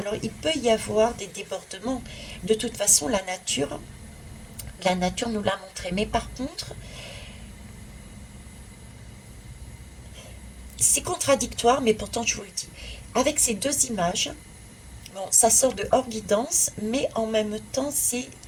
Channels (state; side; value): identical; both; correlation 1.00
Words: il peut y avoir des débordements. De toute façon, la nature nous l'a montré. Mais par contre, c'est contradictoire, mais pourtant je vous le dis. Avec ces deux images, bon, ça sort de hors guidance, mais en même temps,